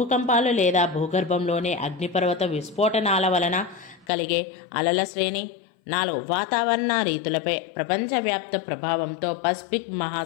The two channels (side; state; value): right; drops out; at 4.0 s